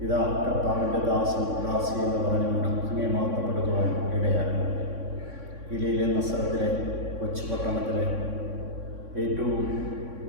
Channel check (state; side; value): late; left; 3.6 ms